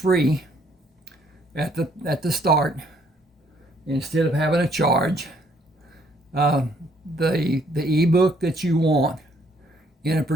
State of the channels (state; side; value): normal; both; correlation 0.66